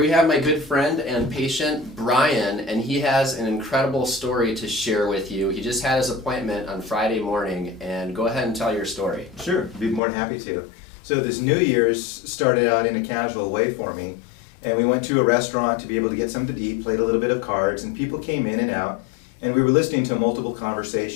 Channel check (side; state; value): right; drops out; at 10.0 s